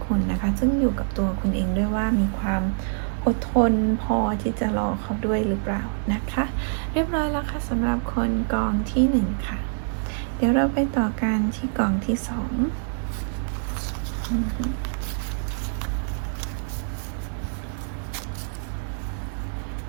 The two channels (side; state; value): left; silent; 61 dB below the other